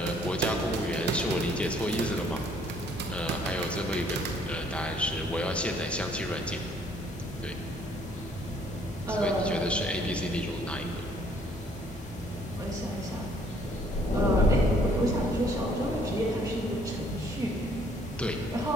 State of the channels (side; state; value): both; normal; correlation 0.62